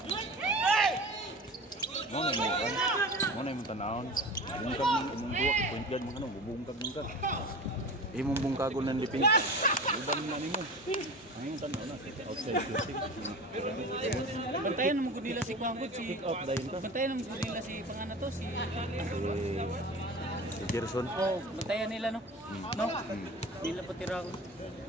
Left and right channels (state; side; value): normal; both; correlation 0.34